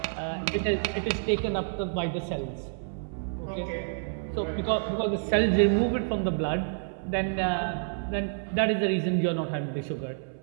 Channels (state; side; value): silent; left; 59 dB below the other